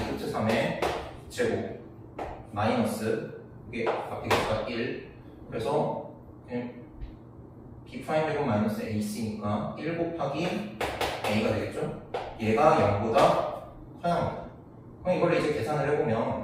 3의 제곱 마이너스 이게 앞에 개수가 1 그래서 b'제곱 마이너스 ac니까 1 곱하기 a가 되겠죠? 얘가 0보다 커야 합니다. 그럼 이걸 이제 계산을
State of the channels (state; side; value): identical; both; correlation 1.00